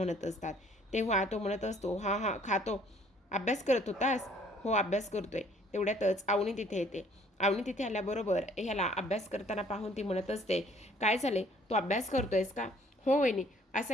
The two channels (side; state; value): both; normal; correlation 0.59